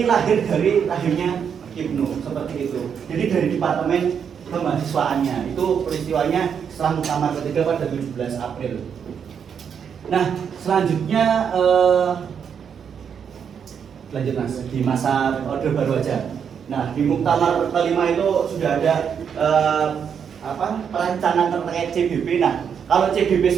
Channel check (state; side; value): quieter; left; 7.4 dB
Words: lahir dari lahirnya Ibnu seperti itu. Jadi dari departemen kemahasiswaannya itu peristiwanya setelah muktamar ketiga pada 17 April. Nah, selanjutnya lanjut Mas di masa Orde Baru aja. Nah, di muktamar kelima itu sudah ada perancangan terkait CBP. Nah, kalau CBP